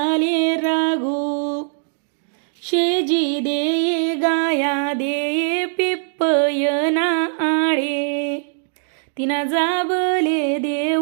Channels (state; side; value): silent; left; digital silence